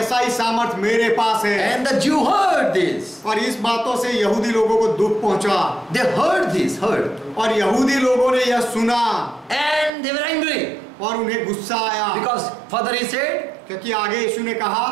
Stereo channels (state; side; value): drops out; left; at 9.9 s